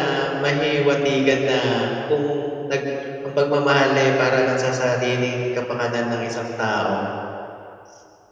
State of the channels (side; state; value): both; identical; correlation 1.00